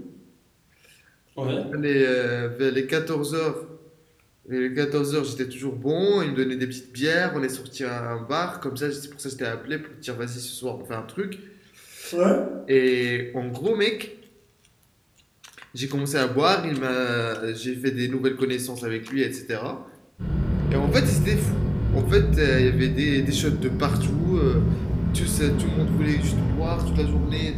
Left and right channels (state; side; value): identical; both; correlation 1.00